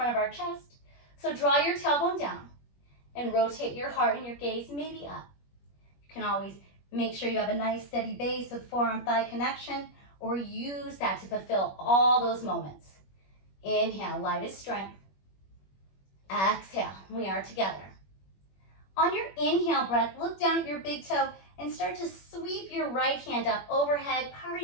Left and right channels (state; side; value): late; right; 21 ms